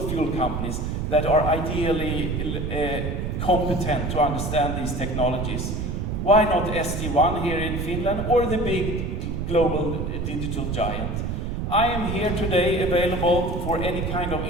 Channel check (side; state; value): right; noise; rumble, 2 dB below the sound